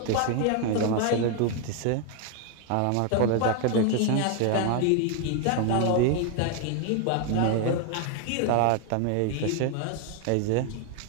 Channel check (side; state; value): both; different; correlation 0.01